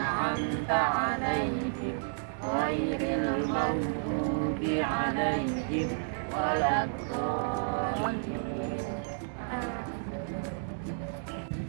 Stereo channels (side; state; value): left; silent; digital silence